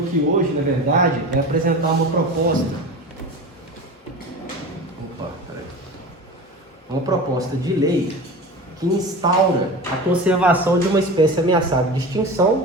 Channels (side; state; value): both; normal; correlation 0.32